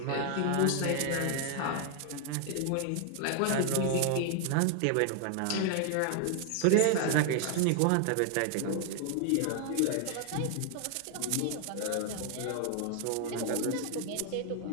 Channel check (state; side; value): different; both; correlation 0.00